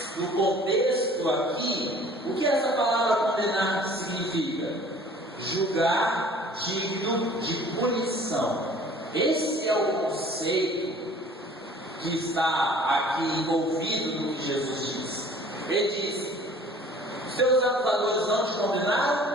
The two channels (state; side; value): normal; both; correlation 0.50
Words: do contexto aqui, o que essa palavra condenar significa? Julgar digno de punição. Esse é o conceito que está aqui envolvido no que Jesus diz. Ele diz: os teus acusadores não te